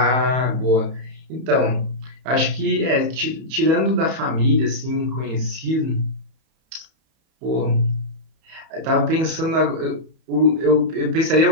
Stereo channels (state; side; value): late; left; 31 ms